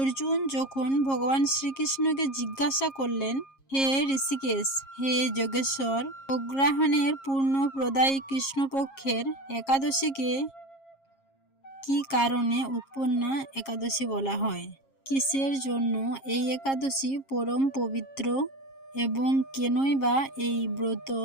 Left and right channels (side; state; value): right; late; 7.4 ms